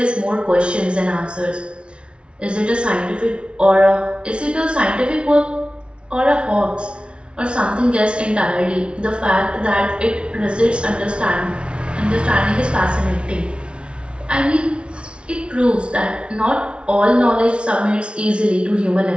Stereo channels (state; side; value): late; left; 0.058 ms